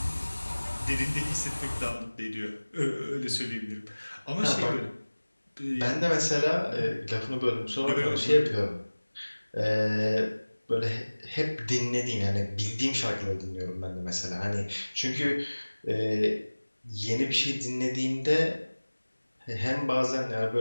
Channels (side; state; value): both; inverted; correlation -1.00